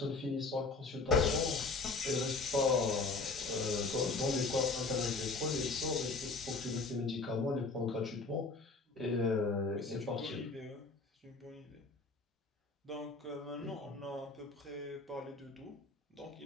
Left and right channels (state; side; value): quieter; right; 3.8 dB